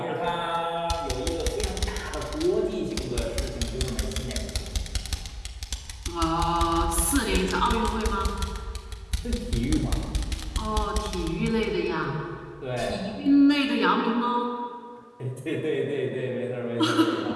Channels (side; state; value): both; identical; correlation 1.00